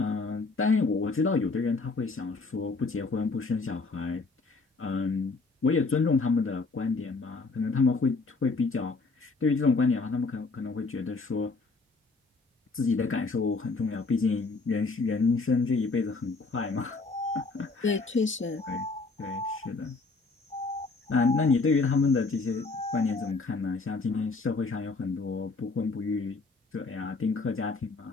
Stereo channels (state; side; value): quieter; right; 3.9 dB